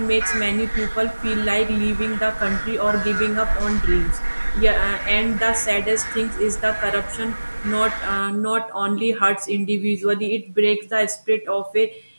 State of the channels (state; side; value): inverted; both; correlation -1.00